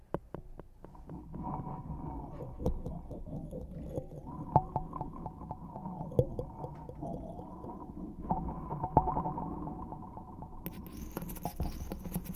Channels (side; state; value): both; identical; correlation 1.00